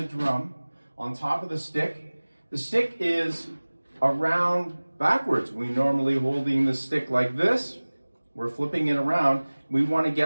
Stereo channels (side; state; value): both; inverted; correlation -1.00